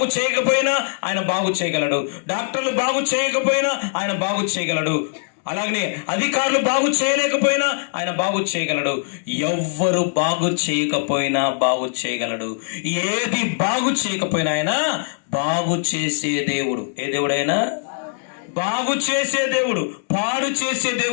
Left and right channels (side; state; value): right; silent; digital silence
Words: చేయకపోయినా ఆయన బాగు చేయగలడు. డాక్టర్లు బాగు చేయకపోయినా ఆయన బాగు చేయగలడు. అలాగనే అధికారులు బాగు చేయలేకపోయినా ఆయన బాగు చేయగలడు. ఎవ్వరు బాగు చేయకపోయినా బాగు చేయగలడు. ఏది బాగు చేయకపోయినా ఆయన బాగు చేసే దేవుడు. ఏ దేవుడైనా బాగు చేసే దేవుడు, పాడు చేసే